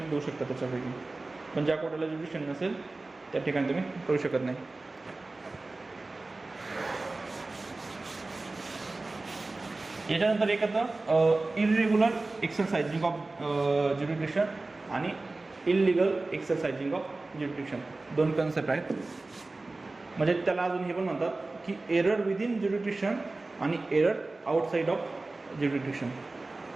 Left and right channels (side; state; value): left; quieter; 3.2 dB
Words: देऊ शकता त्याच्यापैकी, पण ज्या कोर्टाला ज्युरिडिक्शन नसेल त्या ठिकाणी तुम्ही करू शकत नाही. याच्यानंतर एक येतं इरेग्युलर एक्सरसाइजिंग ऑफ ज्युरिडिक्शन आणि illegal exercising of jurisdiction, 2 concept आहेत. म्हणजे त्याला अजून हे पण म्हणतात की एरर विदिन ज्युरिडिक्शन आणि एरर आउटसाईड ऑफ ज्युरिडिक्शन.